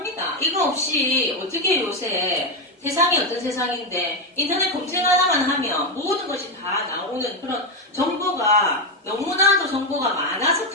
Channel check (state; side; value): normal; both; correlation 0.08